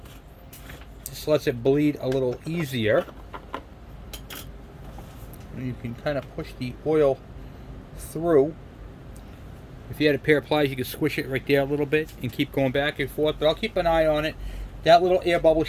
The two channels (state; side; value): identical; both; correlation 1.00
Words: This lets it bleed a little easier. And you can kind of push the oil through. If you had a pair of pliers, you could squish it right there a little bit and keep going back and forth. But I'll keep an eye on it. That little air bubble